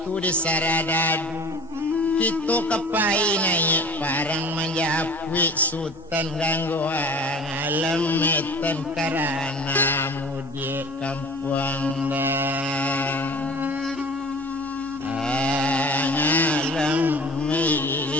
di saradadu kita kepai naik parang menjapui sultan gangguan alam metan karena mudi kampung dah alam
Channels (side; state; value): both; normal; correlation 0.43